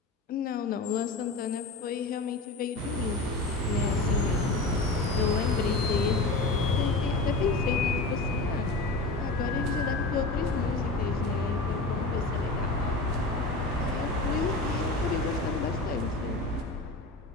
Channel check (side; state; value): right; quieter; 3.1 dB